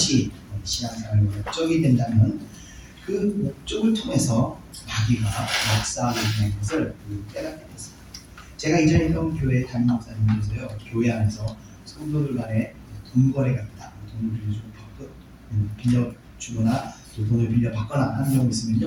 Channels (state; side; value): identical; both; correlation 1.00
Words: 신앙생활의 목적이 된다면 그 목적을 통해서 마귀가 역사하게 되는 것을 깨닫게 됐습니다. 제가 이전에 있던 교회 담임 목사님께서요, 교회 안에서 성도들 간에 돈 거래가 있다, 돈을 빌려주거나 또 돈을 빌려 받거나 하는 경우